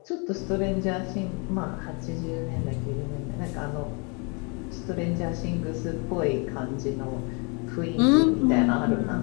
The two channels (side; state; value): right; quieter; 33.8 dB